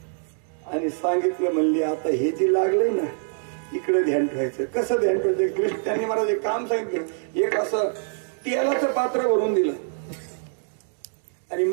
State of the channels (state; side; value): silent; left; digital silence